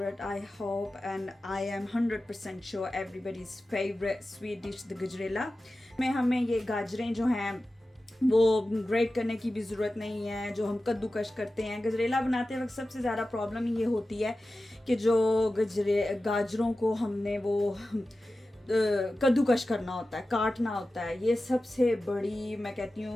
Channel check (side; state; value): both; normal; correlation 0.94